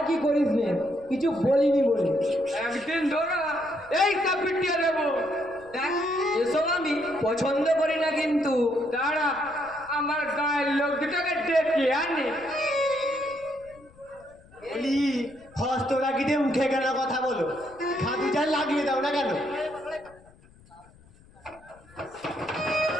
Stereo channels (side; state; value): left; noise; rumble, 26 dB below the sound